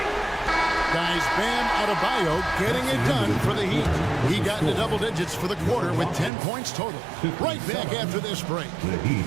Guys, Bam Adebayo getting it done for the Heat. He got into double digits for the quarter with 10 points total. Right back after this break. The Heat,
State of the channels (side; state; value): left; drops out; at 6.3 s